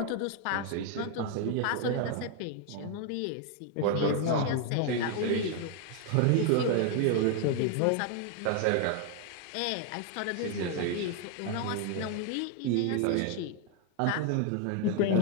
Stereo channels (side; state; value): both; different; correlation 0.01